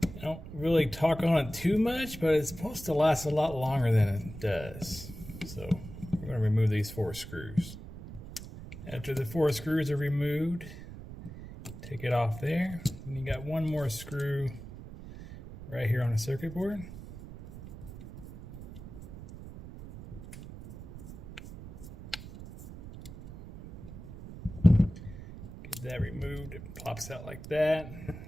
I don't really talk on it too much, but it's supposed to last a lot longer than it does. So we're going to remove these 4 screws. After the 4 screws are removed, take it off there. And you got one more screw right here on the circuit board. Get that removed. It pops out like that.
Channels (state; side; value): noise; right; rumble, 13 dB below the sound